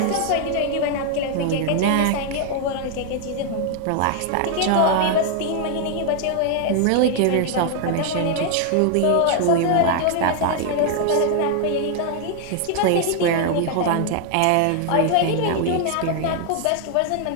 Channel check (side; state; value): both; different; correlation 0.00